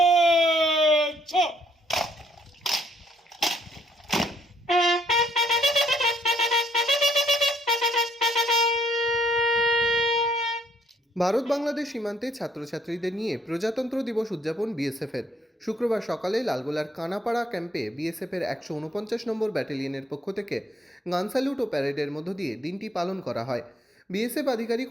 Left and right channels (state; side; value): normal; both; correlation 0.68